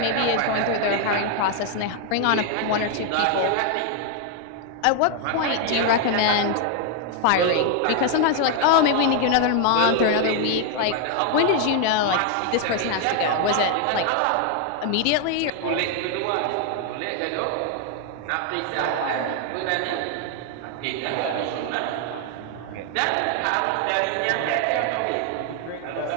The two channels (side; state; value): both; different; correlation 0.00